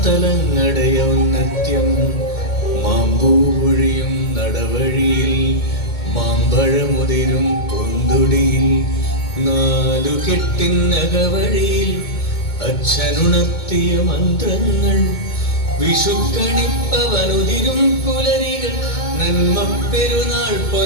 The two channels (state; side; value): late; right; 2.2 ms